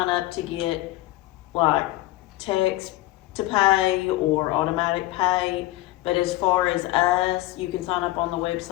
up to get like text to pay or automatic pay. But as far as us, you can sign up on the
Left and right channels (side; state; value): right; quieter; 18.0 dB